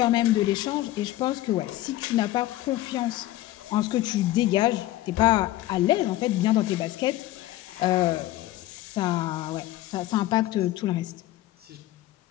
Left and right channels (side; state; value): right; quieter; 15.6 dB